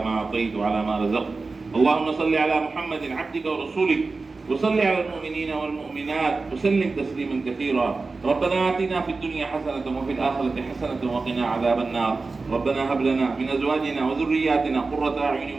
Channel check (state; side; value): quieter; left; 3.9 dB